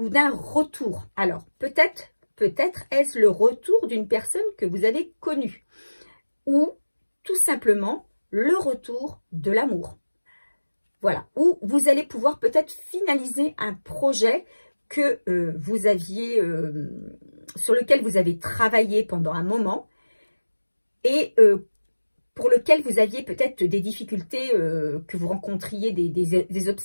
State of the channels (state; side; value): inverted; both; correlation -1.00